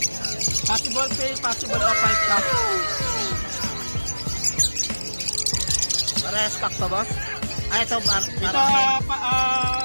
Possible pay, possible off 5 stock. Para stock to, boss? Ah, ito, Ito,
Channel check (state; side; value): inverted; both; correlation -1.00